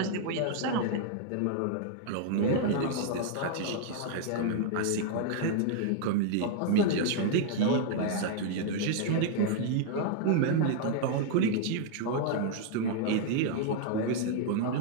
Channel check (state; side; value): different; both; correlation 0.00